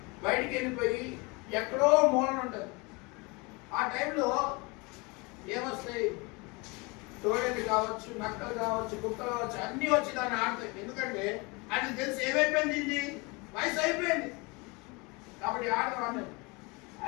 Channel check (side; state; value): right; quieter; 27.4 dB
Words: వెళ్ళిపోయి ఎక్కడో మూలన ఉంటుంది. ఆ టైంలో ఏమొస్తాయి? తోడేళ్ళు కావచ్చు, నక్కలు కావచ్చు, కుక్కలు కావచ్చు, అన్నీ వచ్చి దాన్ని ఆడతాయి. ఎందుకంటే అది తెలిసి ఏమైపోయింది? ఇది వయసు అయిపోయింది కాబట్టి ఆడవాడిని.